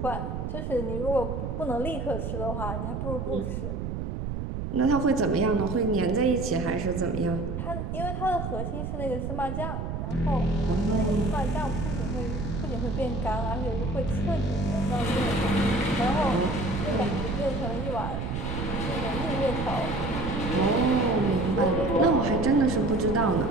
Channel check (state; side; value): noise; right; rumble, 4 dB below the sound